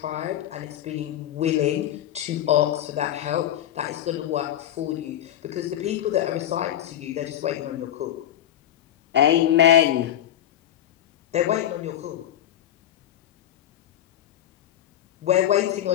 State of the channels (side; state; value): right; quieter; 11.4 dB